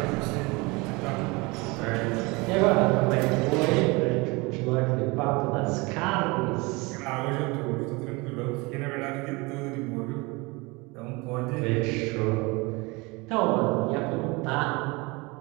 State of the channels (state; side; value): quieter; left; 25.7 dB